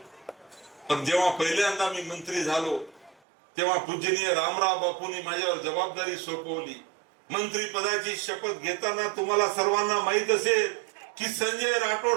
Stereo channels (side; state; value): left; drops out; at 3.2 s